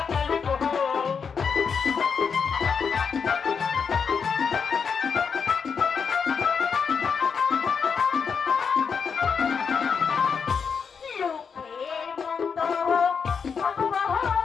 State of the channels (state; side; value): quieter; right; 6.1 dB